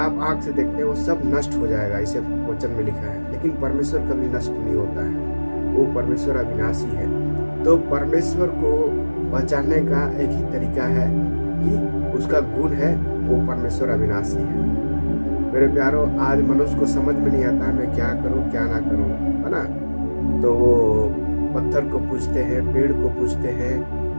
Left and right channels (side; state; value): both; inverted; correlation -1.00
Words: आंख से देखते हैं वो सब नष्ट हो जाएगा, इसे वचन में लिखा है। लेकिन परमेश्वर कभी नष्ट नहीं होता है, वो परमेश्वर अविनाशी है। तो परमेश्वर को पहचानने का एक ही तरीका है कि उसका गुण है, वो परमेश्वर अविनाशी है। मेरे प्यारों, आज मनुष्य को समझ में नहीं आता है मैं क्या करूं क्या ना करूं, है ना। तो वो पत्थर को पूजते हैं, पेड़ को पूजते हैं